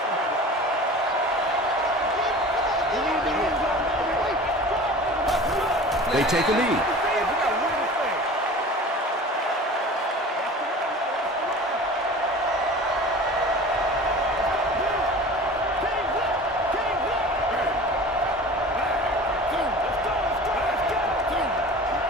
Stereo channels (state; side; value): normal; both; correlation 0.39